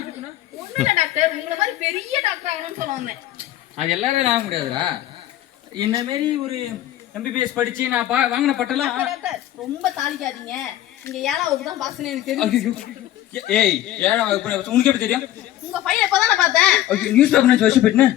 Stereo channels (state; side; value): quieter; right; 13.4 dB